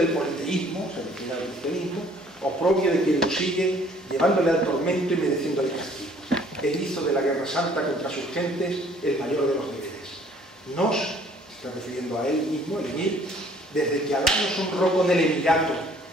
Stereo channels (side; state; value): both; normal; correlation 0.58